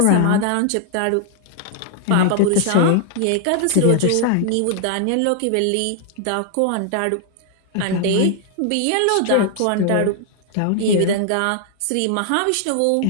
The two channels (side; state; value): both; different; correlation 0.00